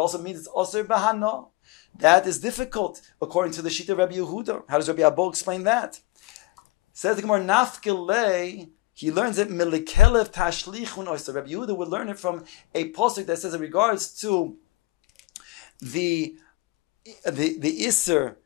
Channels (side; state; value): right; quieter; 19.6 dB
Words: means it's osir bahano? That is difficult according to the Shita of Rabbi Yehuda. How does Rabbi Abba explain that? Says the Gemara nafkilei. He learns it milikelev tashlichun oyster. Rabbi Yehuda would learn it from a pasuk that says in regards to the iser